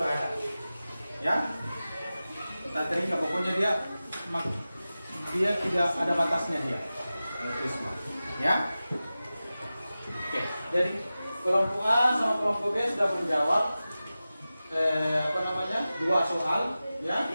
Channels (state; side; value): inverted; both; correlation -0.95